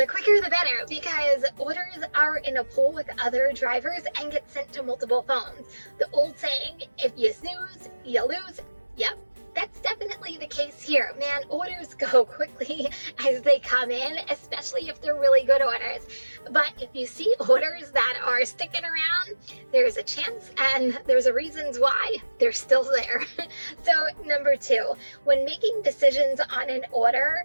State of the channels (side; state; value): both; inverted; correlation -1.00